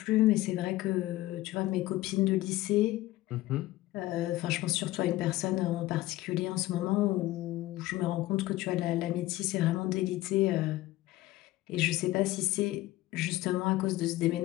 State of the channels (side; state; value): right; quieter; 17.0 dB